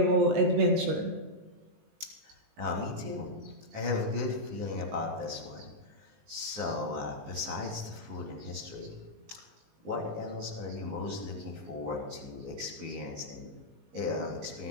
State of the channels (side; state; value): left; late; 19 ms